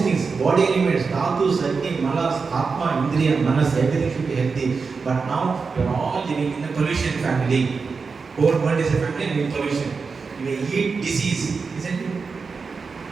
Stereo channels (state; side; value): quieter; left; 4.9 dB